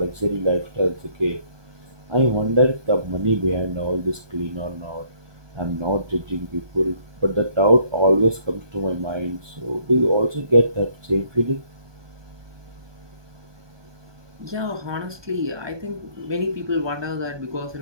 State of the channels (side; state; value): left; late; 1.2 ms